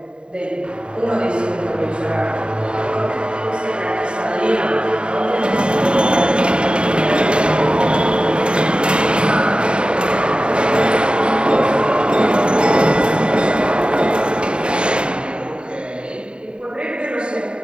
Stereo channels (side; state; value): left; late; 0.052 ms